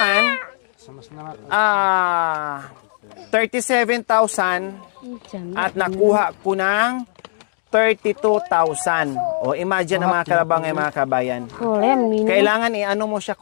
37,000 at nakuha ko ng 32,000. O, imagine ang mga kalabaw ngayon, mga kabayan. Kailangan i-ano mo siya,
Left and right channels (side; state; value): right; silent; digital silence